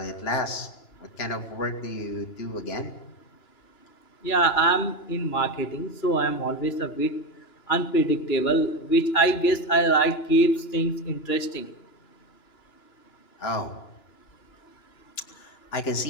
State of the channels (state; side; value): late; right; 2.9 ms